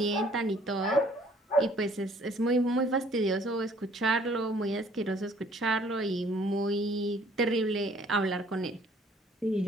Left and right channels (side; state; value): both; normal; correlation 0.59